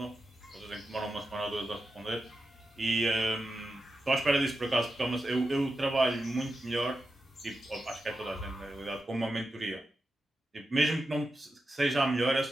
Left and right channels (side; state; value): both; normal; correlation 0.89